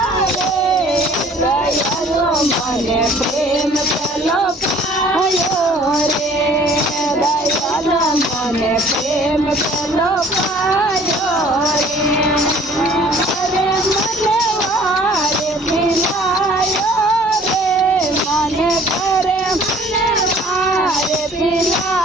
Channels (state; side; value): normal; both; correlation 0.53